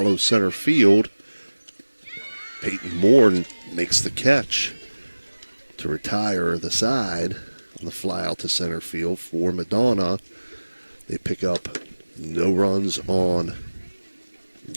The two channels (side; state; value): both; inverted; correlation -1.00